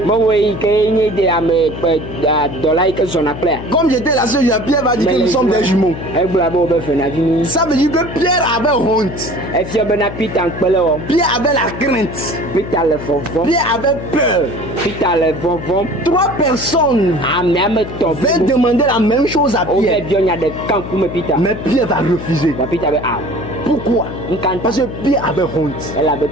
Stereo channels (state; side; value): noise; left; hum, 9 dB below the sound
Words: Comme j'étais la seule, Pierre va dire que nous sommes des jumeaux. Ça veut dire que Pierre avait honte. Pierre avait la crainte. Pierre avait peur. 3 personnes veulent demander la même chose à Pierre. Mais Pierre va refuser. Pourquoi? Parce que Pierre avait honte.